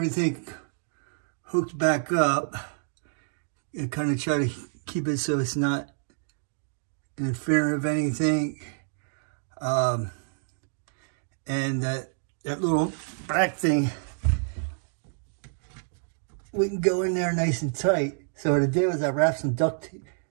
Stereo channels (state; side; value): silent; left; digital silence